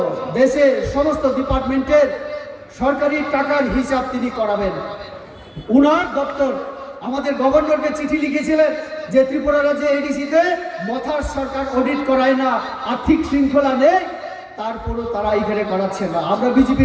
দেশের সমস্ত ডিপার্টমেন্টের সরকারি টাকার হিসাব তিনি করাবেন। উনার দপ্তর আমাদের গভর্নরকে চিঠি লিখেছিলেন যে ত্রিপুরা রাজ্যে এডিসিতে মথার সরকার অডিট করায় না, আর্থিক শৃঙ্খলা নেই, তারপরও তারা এখানে করাচ্ছে না। আমরা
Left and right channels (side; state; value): both; identical; correlation 1.00